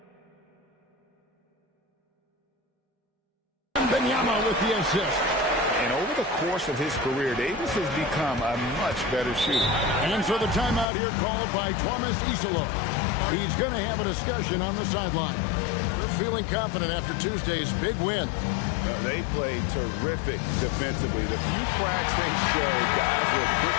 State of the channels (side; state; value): right; drops out; at 10.9 s